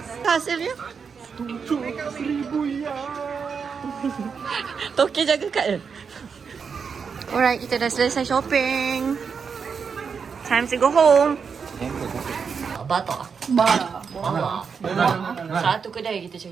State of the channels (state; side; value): quieter; left; 6.0 dB